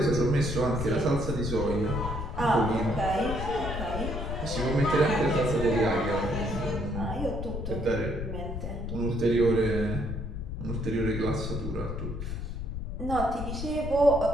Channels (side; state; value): left; noise; rumble, 5 dB below the sound